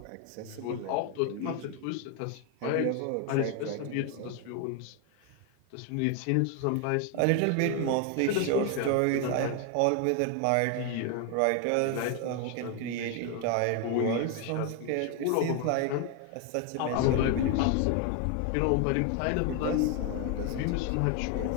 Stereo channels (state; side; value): different; both; correlation 0.01